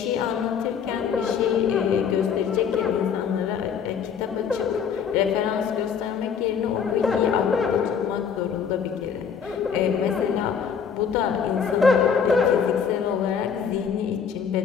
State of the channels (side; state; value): right; quieter; 6.9 dB